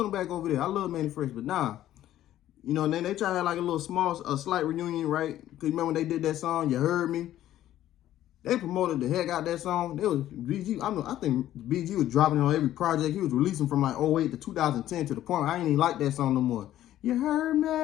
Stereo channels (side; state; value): right; quieter; 12.9 dB